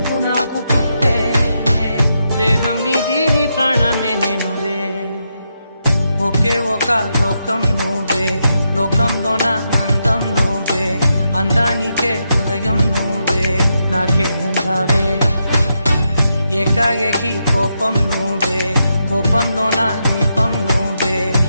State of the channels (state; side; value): inverted; both; correlation -0.83